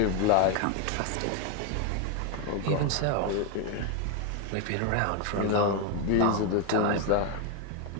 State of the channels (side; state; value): both; different; correlation 0.01